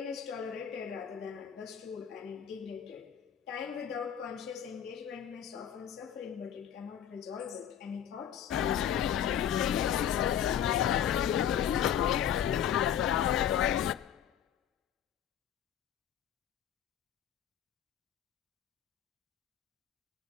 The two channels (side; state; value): right; quieter; 9.7 dB